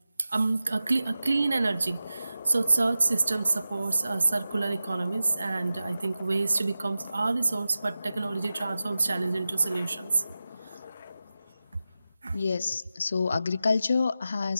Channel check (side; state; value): both; inverted; correlation -0.94